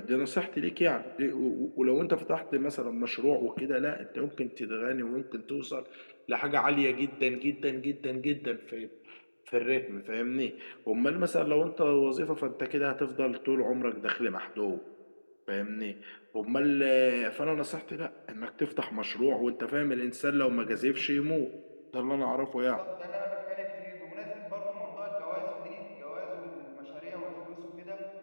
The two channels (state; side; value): inverted; both; correlation -1.00